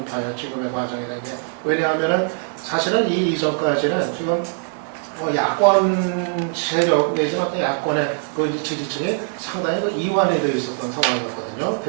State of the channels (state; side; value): silent; left; 56 dB below the other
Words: 봐요. 지금의 과정이라는 게. 왜냐하면은 사실은 이 이전까지는 지금 야권 세력 내지는 어떤 야권의 그 지지층이 상당히 이완이 되어 있었던 상황이었거든요.